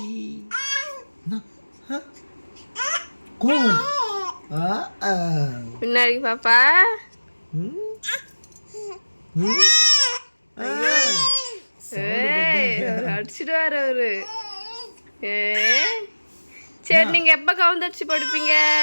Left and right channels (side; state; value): both; inverted; correlation -1.00